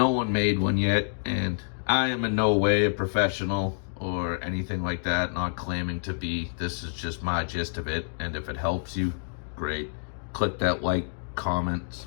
one made one yet. And I am in no way a professional or anything like that, not claiming to be. This is just my gist of it, and if it helps you, great. Click that like, comment,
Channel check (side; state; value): right; silent; digital silence